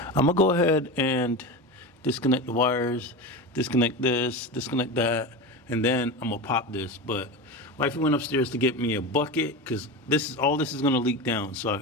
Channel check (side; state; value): both; normal; correlation 0.24